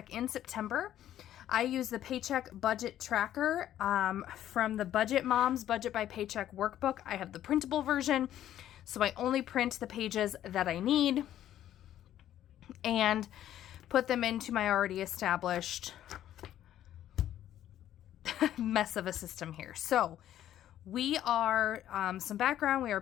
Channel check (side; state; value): right; quieter; 11.8 dB